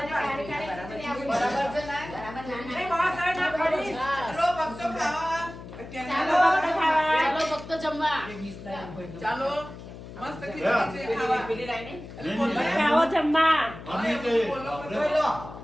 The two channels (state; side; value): noise; left; hum, 14 dB below the sound